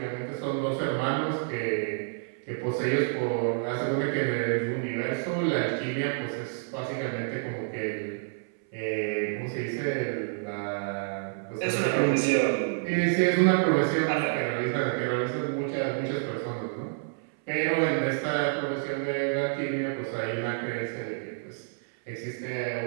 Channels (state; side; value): silent; left; 59 dB below the other